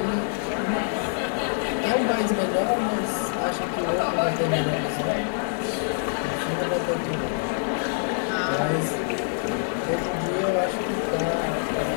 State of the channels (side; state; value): right; silent; digital silence